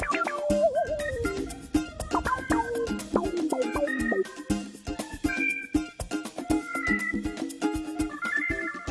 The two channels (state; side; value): identical; both; correlation 1.00